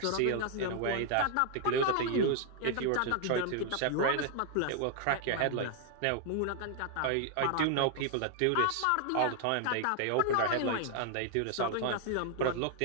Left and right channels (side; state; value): both; different; correlation 0.00